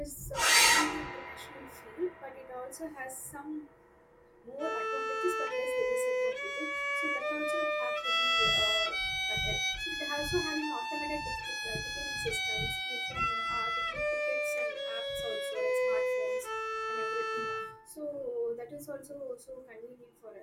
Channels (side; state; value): both; identical; correlation 1.00